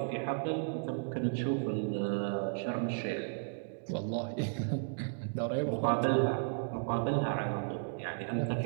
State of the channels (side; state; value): left; silent; digital silence